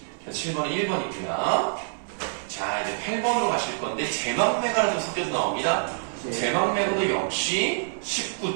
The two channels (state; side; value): silent; left; 61 dB below the other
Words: 7번은 1번이고요. 자, 이제 8번으로 가실 건데 제막매가가 좀 섞여서 나옵니다. 제막매가도 역시